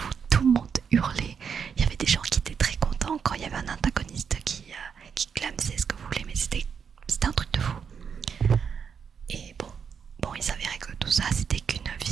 tout le monde hurlait. Il y avait des gens qui étaient très contents quand il y avait un antagoniste qui clamsait ce que vous voulez, mais c'était un truc de fou. Et bon, il s'avérait que tout ça c'était qu'une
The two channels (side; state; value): left; quieter; 6.8 dB